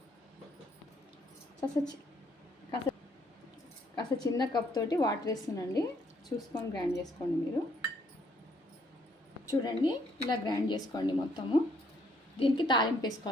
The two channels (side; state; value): both; normal; correlation 0.68